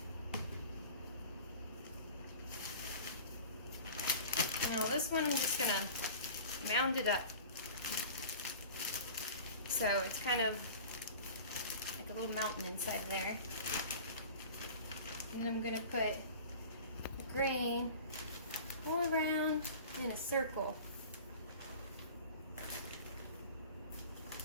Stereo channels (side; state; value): both; inverted; correlation -0.40